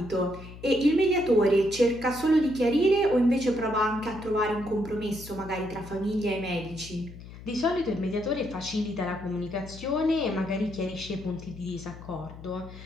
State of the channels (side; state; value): left; noise; hum, 15 dB below the sound